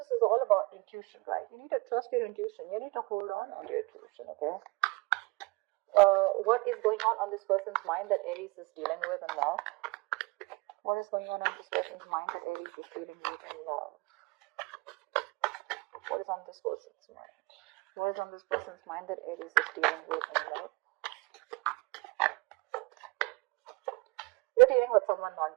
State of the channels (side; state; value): left; quieter; 25.0 dB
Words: is all about intuition, right? You need to trust your intuition. You need to hold on to your intuition, okay? What is going on this person's mind that Aries is dealing with in love? What is going on in this person's mind that Aries is dealing with in love? What is on this person's mind? What is on this person's mind that Aries is dealing with in love? You're dealing with someone